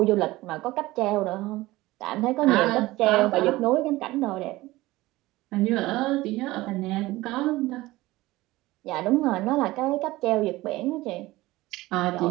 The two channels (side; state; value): left; quieter; 18.7 dB